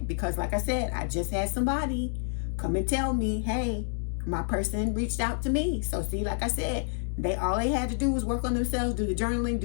Because like I said, I just had somebody come and tell me, hey, my person reached out to me. So see, like I said, all they had to do was work on themselves, do the journaling,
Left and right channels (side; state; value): right; silent; digital silence